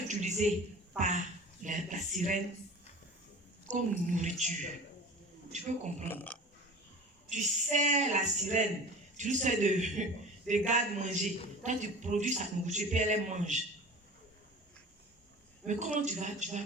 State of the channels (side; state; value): both; normal; correlation 0.39